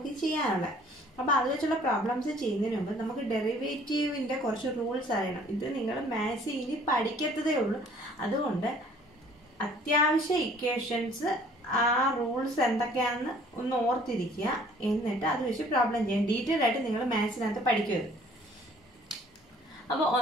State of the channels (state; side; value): normal; both; correlation 0.56